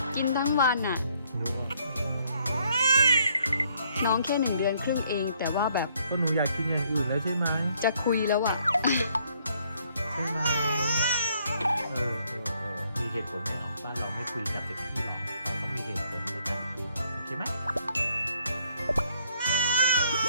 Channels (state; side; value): inverted; both; correlation -0.67